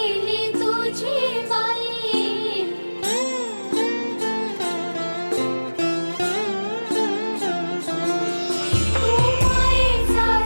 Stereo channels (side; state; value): both; inverted; correlation -1.00